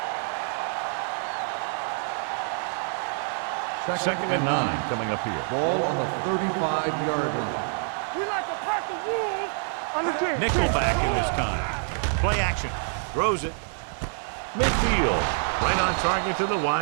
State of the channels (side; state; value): left; silent; 61 dB below the other